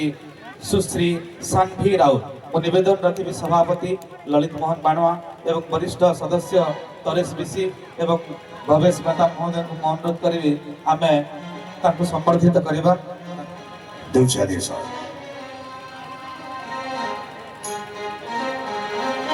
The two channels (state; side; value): identical; both; correlation 1.00